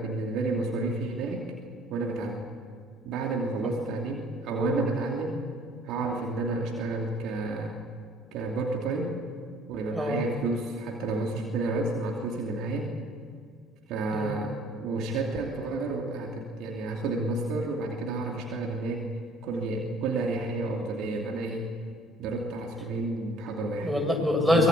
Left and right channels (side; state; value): both; normal; correlation 0.55